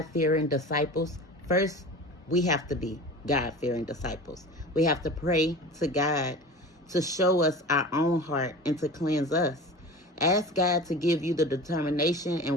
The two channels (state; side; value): normal; both; correlation 0.35